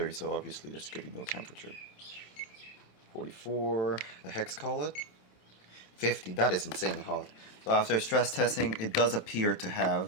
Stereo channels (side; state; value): right; late; 27 ms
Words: so obviously there's gonna be no temperature. 44, the hex collet, 50, that is insanely hot. So after stress testing, it does appear to